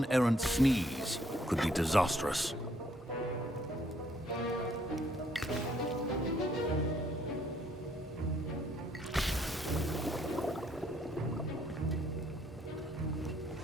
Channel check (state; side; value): normal; both; correlation 0.67